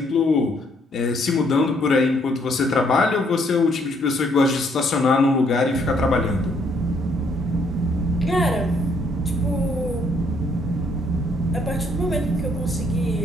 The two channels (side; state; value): both; normal; correlation 0.68